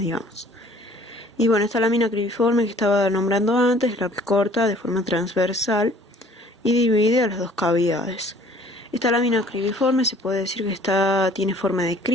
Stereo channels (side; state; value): both; normal; correlation 0.54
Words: Y bueno, esta lámina cribiforme que estaba nombrando antes es la que corta de forma transversal y divide a las dos cavidades. Esta lámina cribiforme se puede decir que tiene forma de